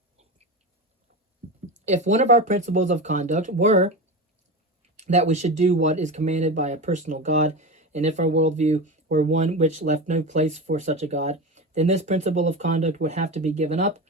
if one of our principles of conduct were that we should do what is commanded by a personal God, and if our worldview were one which left no place for such a God, then this principle of conduct would have to be given up,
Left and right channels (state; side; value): normal; both; correlation 0.24